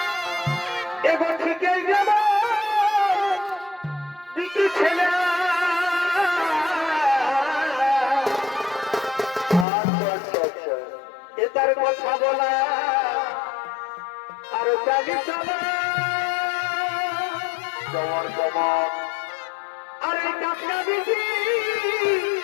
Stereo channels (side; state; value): right; drops out; at 9.7 s